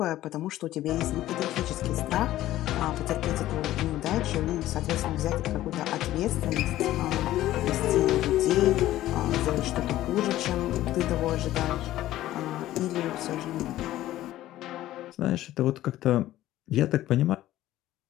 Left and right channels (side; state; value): right; quieter; 14.5 dB